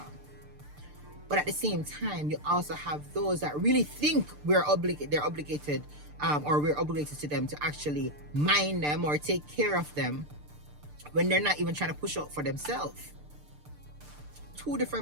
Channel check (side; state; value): left; late; 6.7 ms